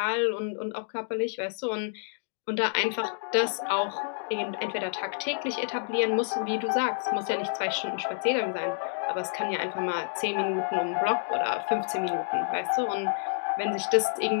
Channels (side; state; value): right; silent; digital silence